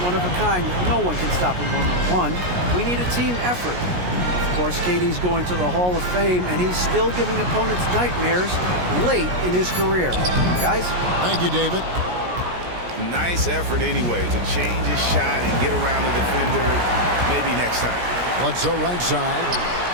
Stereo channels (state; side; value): late; left; 17 ms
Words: one of a kind. No one can stop him one-on-one. We need a team effort. Of course, KD's going to the Hall of Fame, and he's still giving opponents nightmares late in his career. Guys? Thank you, David. Nice effort anyway to change his shot and get around the defender maybe next time. Bledsoe right side.